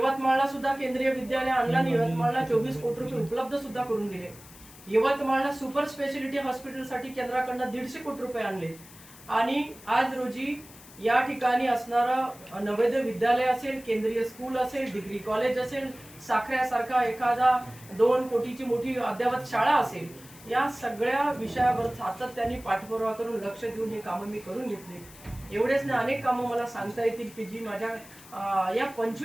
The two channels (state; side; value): noise; left; hiss, 20 dB below the sound